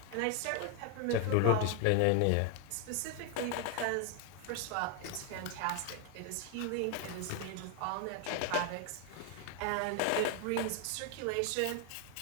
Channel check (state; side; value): different; both; correlation 0.01